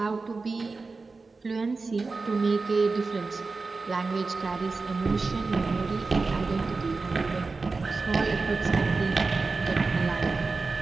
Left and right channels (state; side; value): quieter; left; 4.0 dB